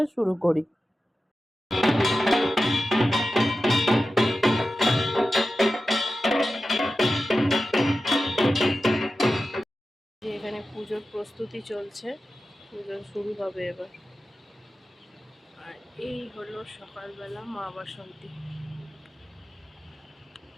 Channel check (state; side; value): normal; both; correlation 0.93